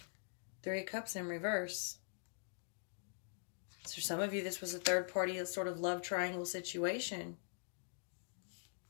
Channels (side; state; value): right; silent; digital silence